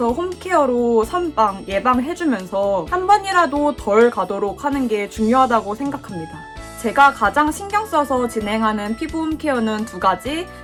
홈케어로 선방, 예방해주면서 한 번이라도 덜 가도록 하는 게 중요하다고 생각합니다. 제가 가장 신경 써서 진행하는 피부 홈케어는 2가지.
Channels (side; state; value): both; identical; correlation 1.00